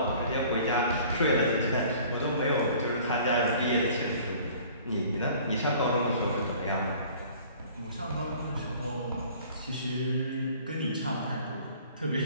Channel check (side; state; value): both; inverted; correlation -0.50